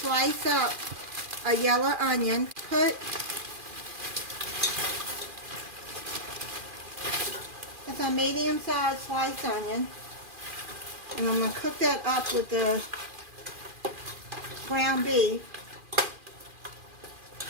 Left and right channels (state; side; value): late; left; 2.4 ms